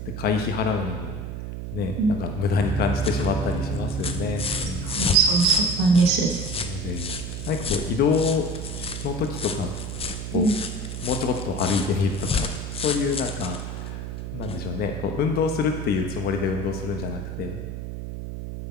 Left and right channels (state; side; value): noise; right; hum, 6 dB below the sound